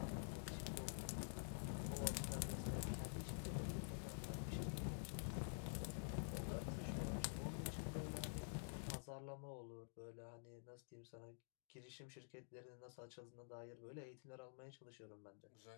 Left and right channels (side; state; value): right; silent; digital silence